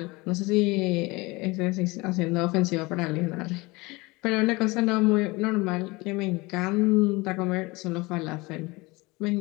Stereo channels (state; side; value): quieter; right; 23.6 dB